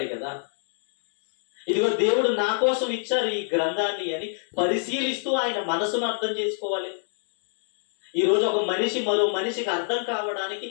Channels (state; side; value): silent; right; digital silence